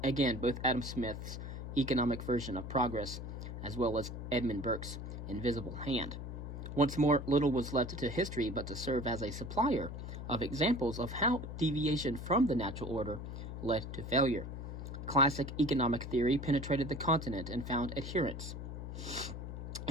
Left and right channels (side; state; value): left; noise; hum, 7 dB below the sound